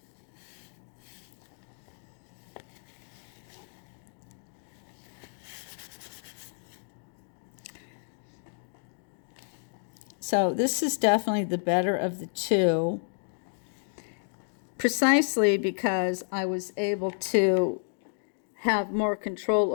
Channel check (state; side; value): silent; right; digital silence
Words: So this is definitely the better of the two, precisely because I was able to have more control